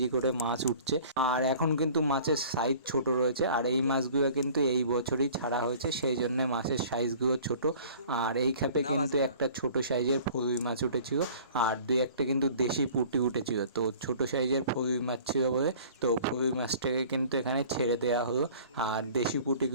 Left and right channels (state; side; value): inverted; both; correlation -0.48